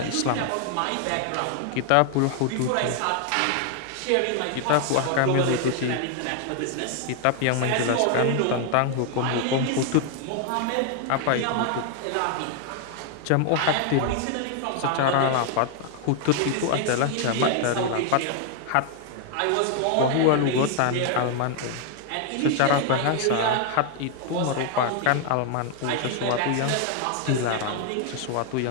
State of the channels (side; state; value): both; different; correlation 0.00